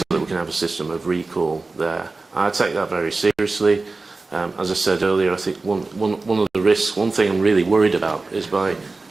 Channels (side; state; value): left; quieter; 3.6 dB